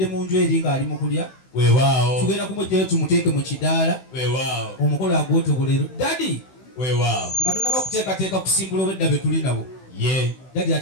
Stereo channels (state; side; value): late; right; 16 ms